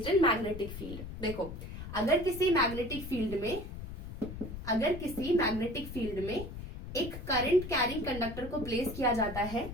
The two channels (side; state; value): left; noise; rumble, 10 dB below the sound